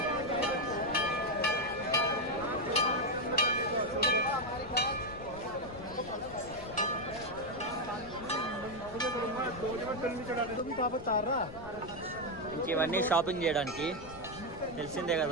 ఇంక ఇవన్నీ షాపింగ్ చేయడానికి తెలిసిందే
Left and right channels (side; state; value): left; noise; rumble, 16 dB below the sound